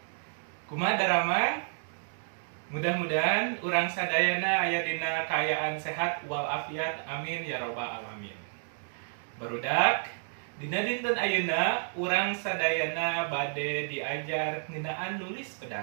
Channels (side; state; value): left; silent; digital silence